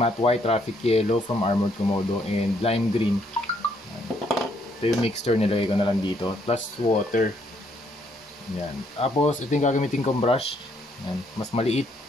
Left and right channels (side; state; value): both; normal; correlation 0.70